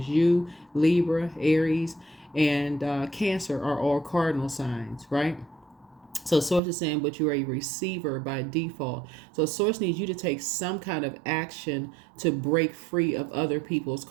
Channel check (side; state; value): left; drops out; at 6.6 s